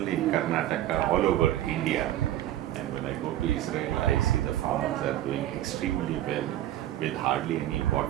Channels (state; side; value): quieter; left; 13.3 dB